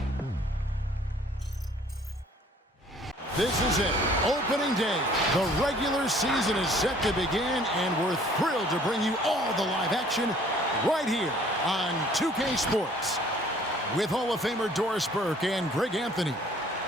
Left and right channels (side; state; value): both; normal; correlation 0.56